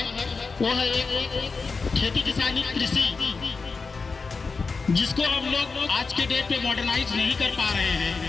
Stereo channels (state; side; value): quieter; right; 4.5 dB